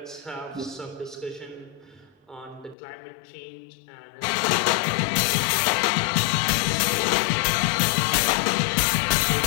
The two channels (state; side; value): drops out; right; at 2.8 s